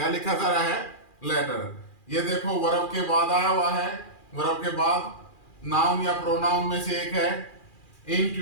लिखा जा रहा है? लेटर। ये देखो वर्ब के बाद आया हुआ है। वर्ब के बाद नाउन या प्रोनाउन में से एक है।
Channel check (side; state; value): right; late; 2.4 ms